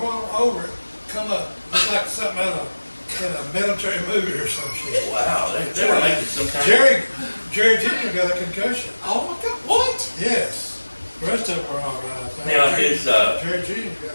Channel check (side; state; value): both; inverted; correlation -1.00